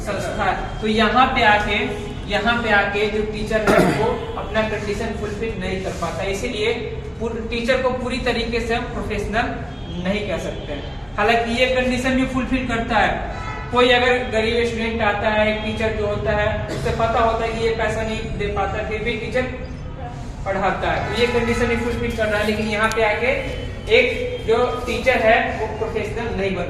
संस्था है। तो यहाँ पे आके जो टीचर है वो अपना कंडीशन फुलफिल नहीं कर पाता, इसीलिए टीचर को पूरी तरीके से हम प्रोफेशनल नहीं कह सकते। हालांकि ये कंडीशन भी फुलफिल करता है। कोई अगर गरीब स्टूडेंट आता है, एक टीचर जो होता है उससे पता होता है कि ये पैसा नहीं दे पाता, फिर भी टीचर पढ़ाता है, तो ये कंडीशन भी फुलफिल कर रहा है। लेकिन यहाँ पे आके एक जो टीचर है वो प्रोफेशनल नहीं बन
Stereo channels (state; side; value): identical; both; correlation 1.00